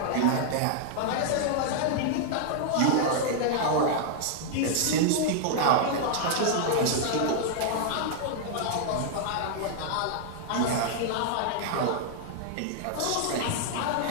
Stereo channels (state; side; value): different; both; correlation -0.01